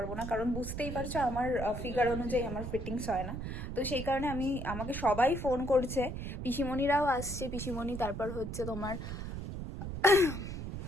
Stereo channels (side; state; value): right; noise; rumble, 6 dB below the sound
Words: না, কারণ বুঝতেই পারছো আমার ফিগার অনুযায়ী আমার ফিটিংস হয় না। তো সেই কারণে আমাকে সবাই ফোন করছে, পিসিমণিরাও আসছে, পিসিমণি, তারপর হচ্ছে তোমার